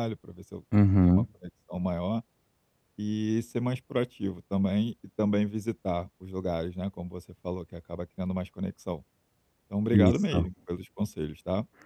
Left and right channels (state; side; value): identical; both; correlation 1.00